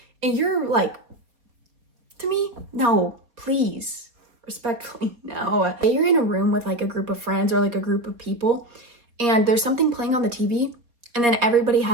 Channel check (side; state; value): left; late; 4.2 ms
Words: and you're like, to me, no, please, respectfully, no. You're in a room with like a group of friends or like a group of people, and there's something playing on the TV, and then everybody